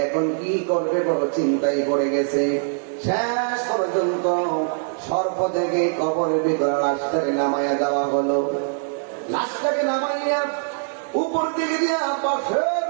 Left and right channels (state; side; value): silent; left; digital silence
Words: এখন কি করবে বড় চিন্তায় পড়ে গেছে। শেষ পর্যন্ত সর্প থেকে কবরের ভিতরে লাশটাকে নামাইয়া দেওয়া হলো। লাশটাকে নামাইয়া উপর দিকে দিয়া বাঁশের